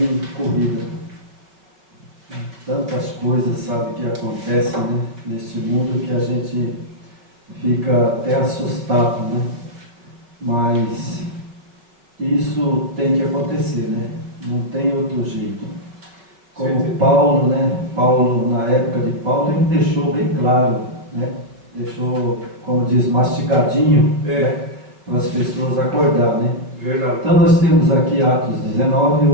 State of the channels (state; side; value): late; left; 5.1 ms